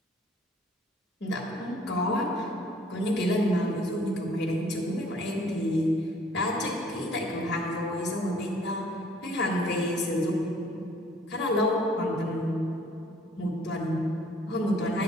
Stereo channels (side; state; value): both; normal; correlation 0.58